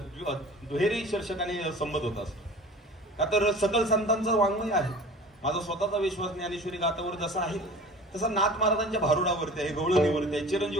दुहेरी शीर्षकाने संबोधत असतो. का तर सकल संतांचं वाङ्मय आहे. माझा स्वतःचा विश्वास ज्ञानेश्वरी गाथावर जसा आहे तसा नाथ महाराजांच्या भारुडावरती आहे, गवळणीवरती आहे,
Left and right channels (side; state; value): both; normal; correlation 0.41